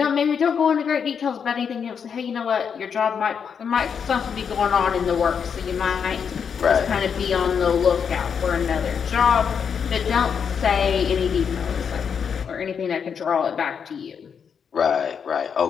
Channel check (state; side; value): quieter; right; 6.9 dB